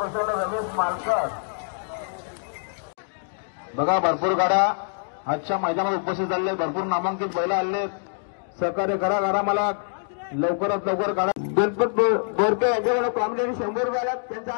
भरपूर गाड्या आजच्या मैदानात उपस्थित झाले, भरपूर नामांकित बैल आले. सहकार्य करा मला लवकरात लवकर काढा. गणपत बोरके यांच्याकडे प्रामुख्याने 100 रुपये आल्यात, त्यांचा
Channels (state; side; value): silent; right; digital silence